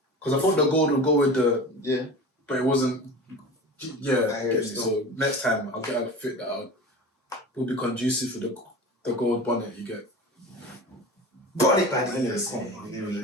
Because I thought the gold would go with the but it wasn't. Yeah, I hear so next time I'll get a fit that will be conducive for the gold bonnet you get. Bonnet man. Anyway, come on,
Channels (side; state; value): both; normal; correlation 0.34